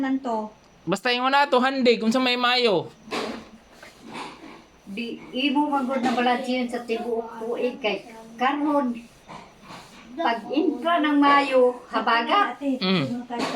to. Basta yung na to handig unsa may maayo. Di imo magod na balansiyan sa tibuok tuig kay karon pag intra ng Mayo habaga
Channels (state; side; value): identical; both; correlation 1.00